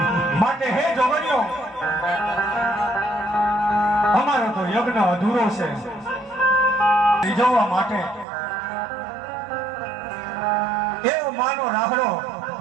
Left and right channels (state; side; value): drops out; left; at 8.2 s